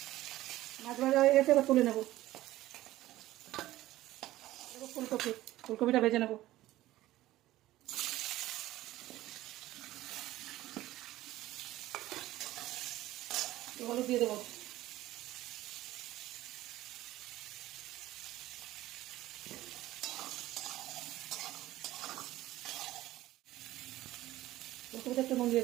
মাছ ভাজা হয়ে গেছে, এবার তুলে নেব। ফুলকপিটা ভেজে নেব। হলুদ দিয়ে দেবো। ফুলকপিটা একটু নুন দিয়ে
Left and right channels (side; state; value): left; quieter; 15.8 dB